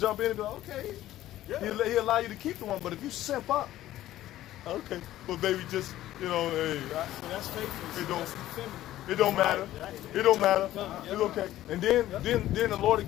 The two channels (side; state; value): right; quieter; 14.1 dB